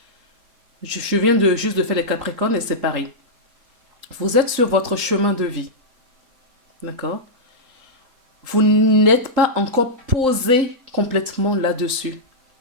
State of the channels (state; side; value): late; left; 3.8 ms